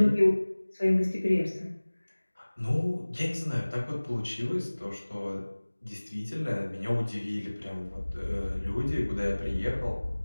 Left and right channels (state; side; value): inverted; both; correlation -1.00